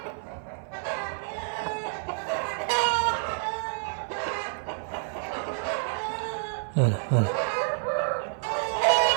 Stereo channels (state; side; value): silent; left; 59 dB below the other